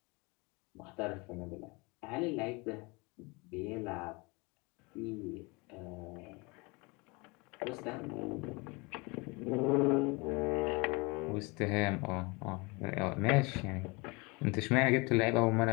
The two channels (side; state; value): right; quieter; 27.4 dB